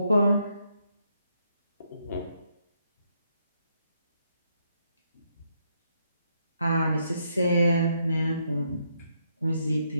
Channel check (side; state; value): both; inverted; correlation -0.76